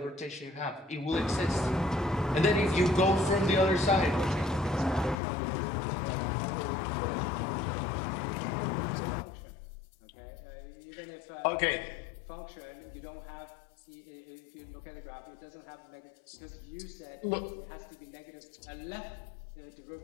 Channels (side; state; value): right; drops out; at 5.2 s